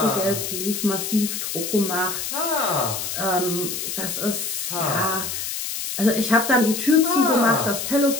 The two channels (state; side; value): noise; left; hiss, 4 dB below the sound